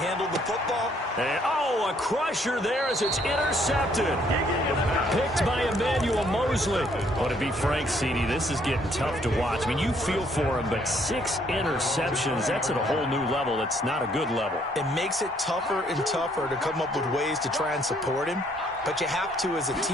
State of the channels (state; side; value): normal; both; correlation 0.66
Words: the football. And, a crusher there as it's intercepted. Picked by Emmanuel Mosley. Oh, to be frank, CD, this is getting tough to watch. I mean, you feel for him, but 6 interceptions, that's at a whole new level. That's not a good level. It makes it tougher and tougher to come up with ways to try and support him. But you have to as a